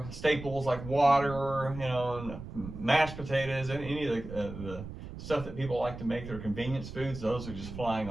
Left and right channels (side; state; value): right; noise; rumble, 11 dB below the sound